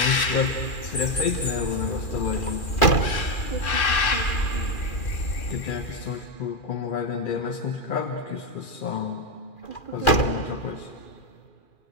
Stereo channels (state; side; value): late; right; 2.4 ms